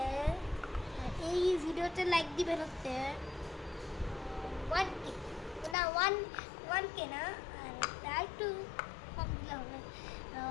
এই ভিডিওতে লাইক দিবেন হচ্ছে 1K না 1K না, আর একটু কম দিলে হবে।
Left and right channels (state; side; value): drops out; right; at 5.8 s